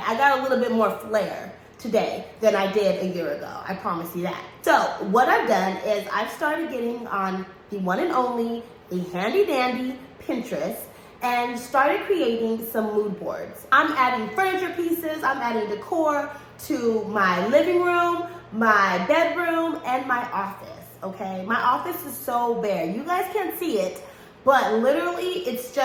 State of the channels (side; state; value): both; identical; correlation 1.00